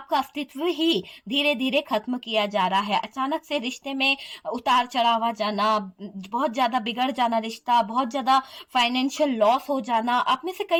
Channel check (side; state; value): both; identical; correlation 1.00